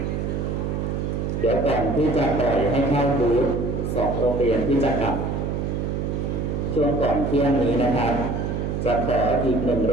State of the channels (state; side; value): noise; right; hum, 1 dB below the sound